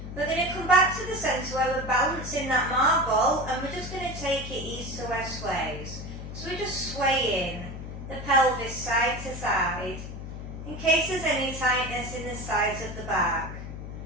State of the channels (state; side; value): noise; left; hum, 9 dB below the sound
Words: We're going to come back to the centre where we're balancing that marble, and we're just going to take it east to west sways. So we're just swaying the pelvis side to side in case there's any tightness in the sides of the back.